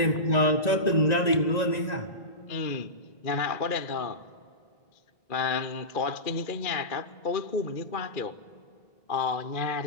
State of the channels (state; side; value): late; right; 1.9 ms